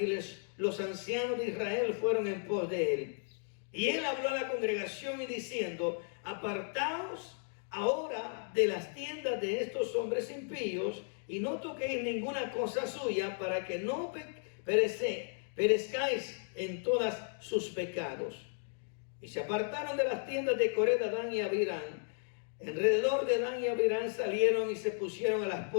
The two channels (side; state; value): right; silent; 55 dB below the other